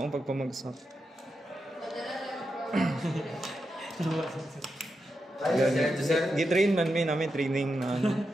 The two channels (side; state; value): both; normal; correlation 0.87